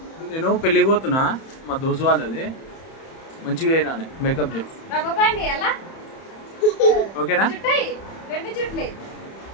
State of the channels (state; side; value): late; right; 31 ms